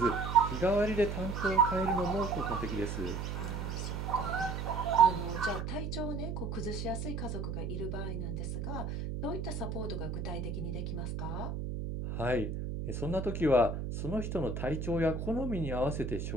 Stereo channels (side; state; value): right; noise; hum, 4 dB below the sound